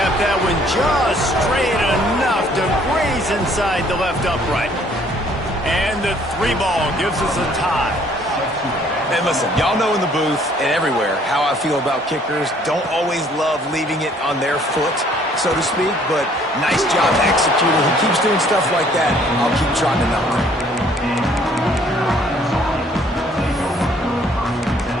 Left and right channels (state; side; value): normal; both; correlation 0.61